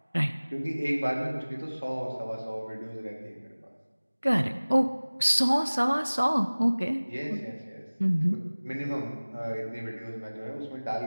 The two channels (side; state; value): both; inverted; correlation -1.00